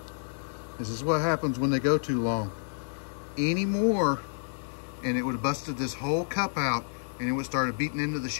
This is what happens when they go too long. Any more and it would have busted this whole cup out and it would have started beating into the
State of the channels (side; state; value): right; silent; digital silence